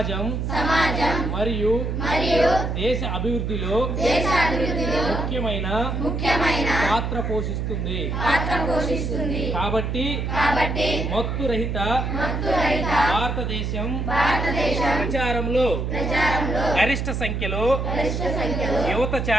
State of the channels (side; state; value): right; noise; hum, 2 dB below the sound